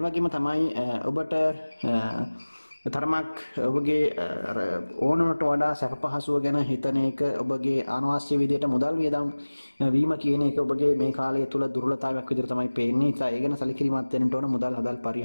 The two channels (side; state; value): both; inverted; correlation -1.00